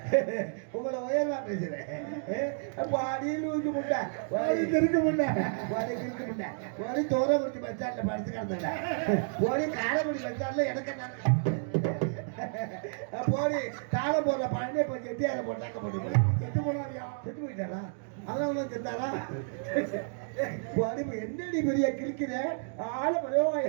உங்களை உயர்வா பேசுறேன். அடியில் ஊற்றி முட்டை இருக்க முட்டை இருக்க முட்டை ஓடி தோரக்குறிச்சி பஸ் ஸ்டாண்ட்ல படுத்து கிடந்தல ஓடி காரைக்குடி பஸ் ஸ்டாண்ட்ல எனக்கு போடி தாளம் போடுற பழனே போய் செட்டி அதை போட்டாக்க போட்டு செத்து போனாரியா? செத்து போயிட்டாரா? அதனால தான் செத்தாரா? என்னடி பெரிய கிழிக்கிற ஆள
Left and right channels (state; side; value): silent; left; digital silence